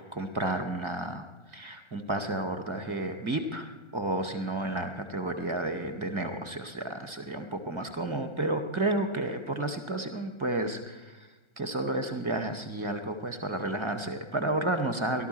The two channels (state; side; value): late; left; 1.8 ms